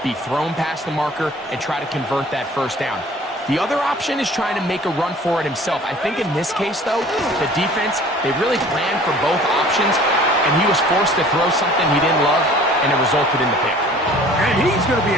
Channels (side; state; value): both; normal; correlation 0.49